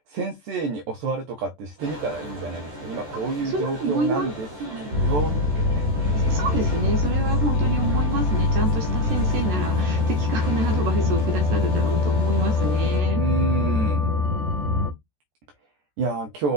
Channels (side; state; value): left; late; 14 ms